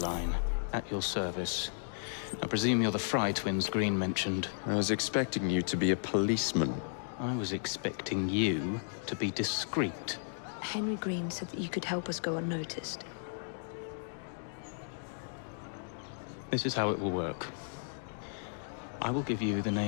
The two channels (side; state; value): right; silent; digital silence